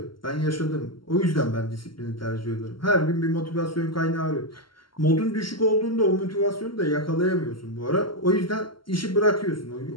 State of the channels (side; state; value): right; late; 0.73 ms